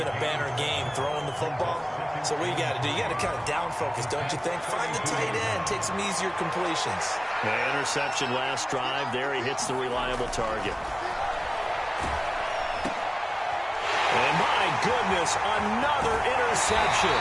a banner game throwing the football. So what you got to do, you got to kind of down focus, don't you think? Find the tight end, take some easier completions. The interception last drive. There he hits the reliable target. And my goodness, another interception.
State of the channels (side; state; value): both; identical; correlation 1.00